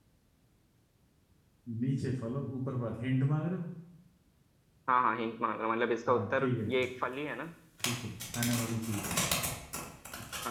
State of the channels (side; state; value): both; identical; correlation 1.00